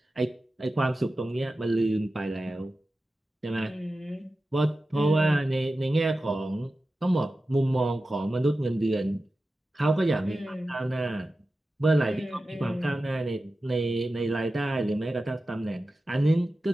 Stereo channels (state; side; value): normal; both; correlation 0.94